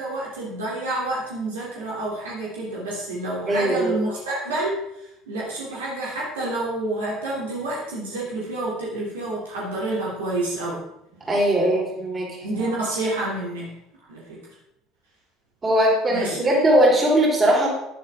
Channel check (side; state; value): both; normal; correlation 0.55